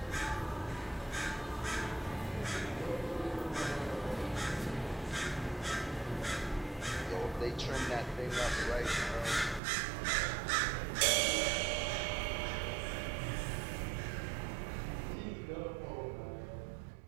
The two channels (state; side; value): drops out; left; at 9.6 s